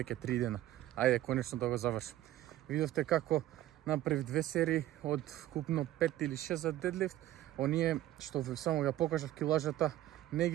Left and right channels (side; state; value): left; quieter; 14.2 dB